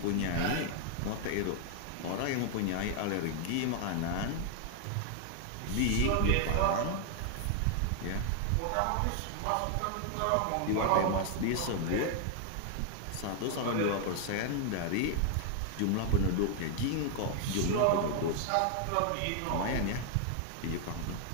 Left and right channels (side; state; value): both; different; correlation 0.00